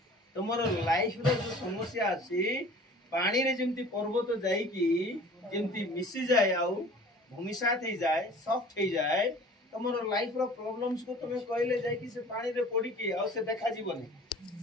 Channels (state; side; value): normal; both; correlation 0.46